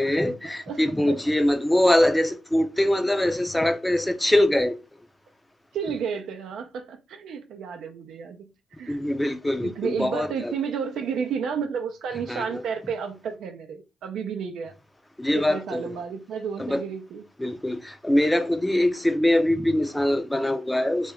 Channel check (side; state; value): both; normal; correlation 0.93